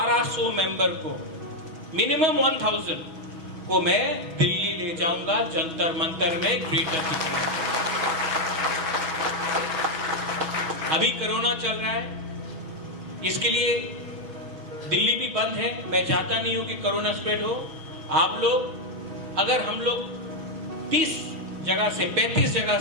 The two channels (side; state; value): left; late; 6.2 ms